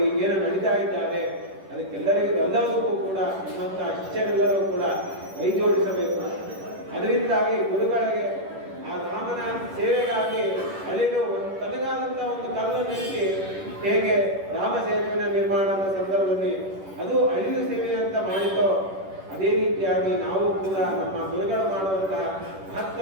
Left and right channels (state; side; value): late; left; 10 ms